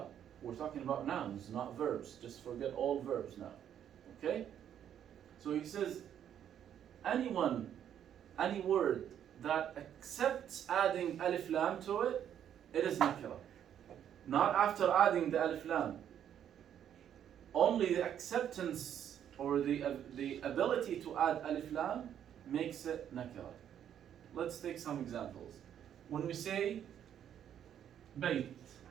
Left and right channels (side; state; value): left; quieter; 9.7 dB